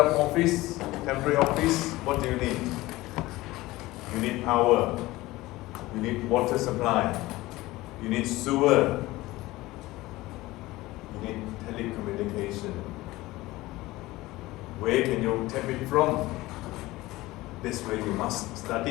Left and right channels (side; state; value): right; quieter; 18.8 dB